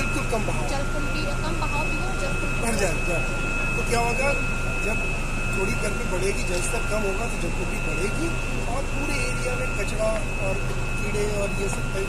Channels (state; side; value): identical; both; correlation 1.00